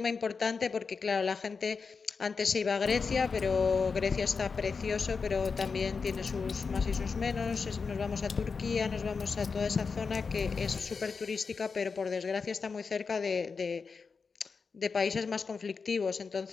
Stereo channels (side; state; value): right; quieter; 5.1 dB